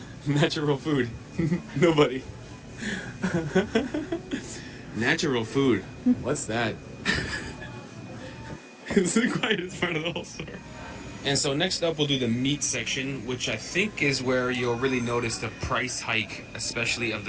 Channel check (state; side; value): identical; both; correlation 1.00